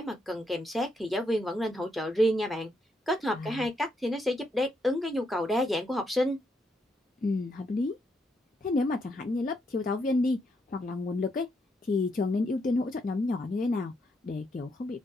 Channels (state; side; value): normal; both; correlation 0.78